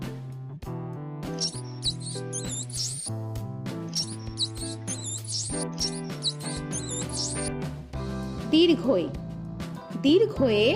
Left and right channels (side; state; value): both; identical; correlation 1.00